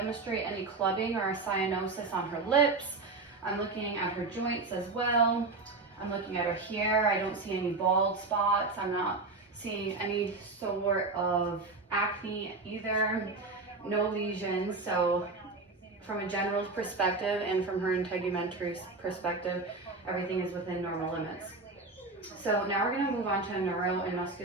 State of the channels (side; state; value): left; quieter; 3.6 dB